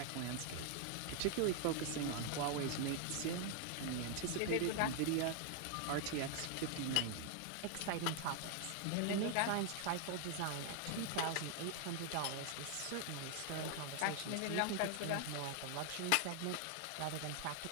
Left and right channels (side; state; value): both; different; correlation 0.00